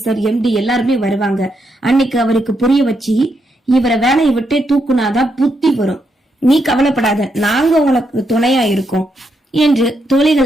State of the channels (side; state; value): both; normal; correlation 0.80